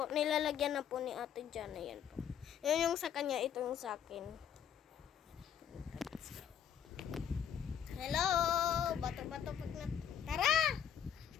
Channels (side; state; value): right; quieter; 9.0 dB